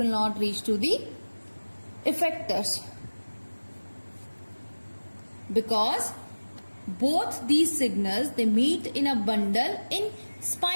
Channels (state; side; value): inverted; both; correlation -1.00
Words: not reach to the effectors, because both these signals, they meet in a bundle in